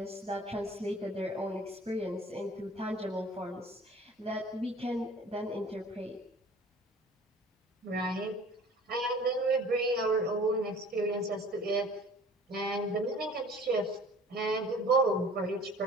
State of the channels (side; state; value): both; normal; correlation 0.47